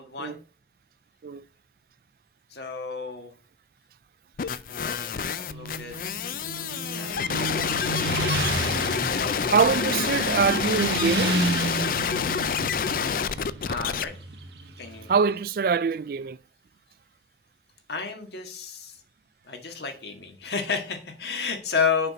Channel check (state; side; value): normal; both; correlation 0.04